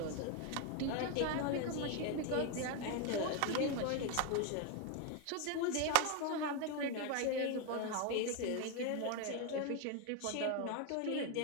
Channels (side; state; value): both; different; correlation 0.01